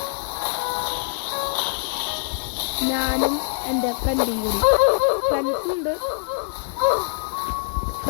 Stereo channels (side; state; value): right; silent; digital silence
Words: ഞാനും എൻ്റെ ഫ്രണ്ടും കൂടി. ഫ്രണ്ട്സുണ്ട്,